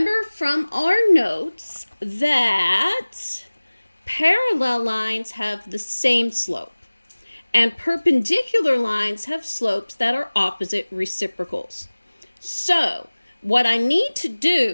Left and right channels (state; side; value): inverted; both; correlation -1.00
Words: from our notes that parallel lines have the same slope, and perpendicular lines have slopes that are opposite reciprocals. So, what I need to